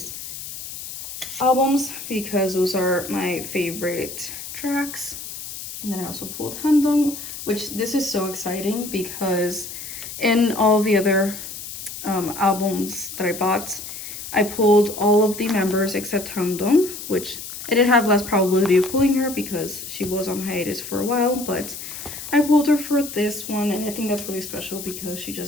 albums because those are my favorite tracks. And then I also pulled Handong, which this is so exciting because in all the other albums that I bought, I pulled all of the members except Handong, which I did have less probability of pulling her because she was on hiatus for a while, but I pulled her for this one, and I think that's really special because she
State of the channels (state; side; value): noise; left; hiss, 10 dB below the sound